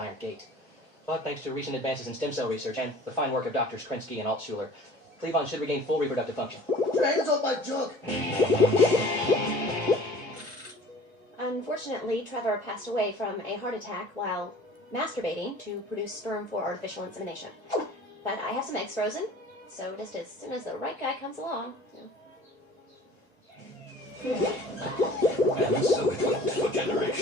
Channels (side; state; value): both; normal; correlation 0.46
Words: gate. But thanks to recent advances in stem cell research and the fine work of Drs. Krinsky and Altshuler, Cleavon should regain full reproductive function. Put your hands off my junk! Unfortunately, Trevor passed away from a heart attack while masturbating to produce sperm for artificial insemination. But I have some eggs frozen, So just as soon as the right guy comes along. And so it went for